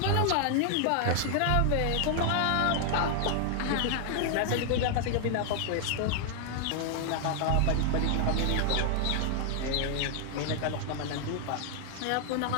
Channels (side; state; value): both; different; correlation 0.00